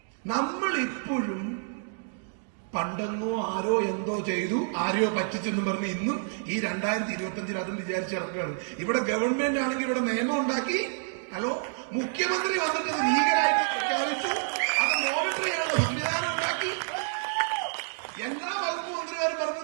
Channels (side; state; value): left; silent; digital silence